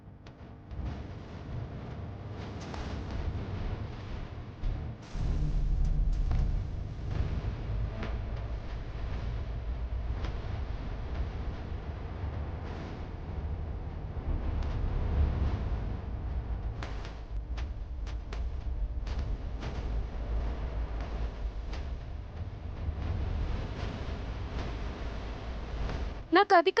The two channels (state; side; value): identical; both; correlation 1.00